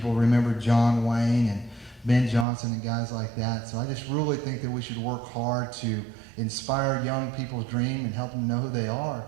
remember John Wayne and Ben Johnson and guys like that. So I just really think that we should work hard to inspire young people's dream and help them know who they are,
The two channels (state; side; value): drops out; left; at 2.5 s